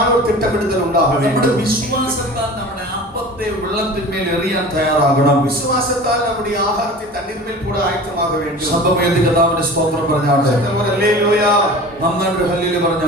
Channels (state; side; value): normal; both; correlation 0.38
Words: ஒரு திட்டமிடுதல் உண்டாக നമ്മുടെ வேண்டும். വിശ്വാസത്താൽ നമ്മുടെ അപ്പത്തെ വെള്ളത്തിന്മേൽ എറിയാൻ തയ്യാറാകണം. വിശ്വാസത്താൽ നമ്മുടെ ആഹാരത്തെ തണ്ണീർമേൽ കൂടെ ആയത്തമാക വേണ്ടി ശബ്ദമേന്തി കർത്താവിന്റെ സ്തോത്രം പറഞ്ഞാട്ടെ. ഹല്ലേലൂയ. നന്നായിട്ട് ഹല്ലേലൂയ